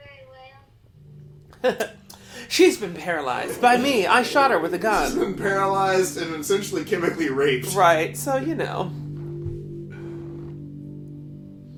very well. She's been paralyzed by me. I shot her with a She's gun. been paralyzed and essentially chemically raped. Right, so you know.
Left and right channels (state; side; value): identical; both; correlation 1.00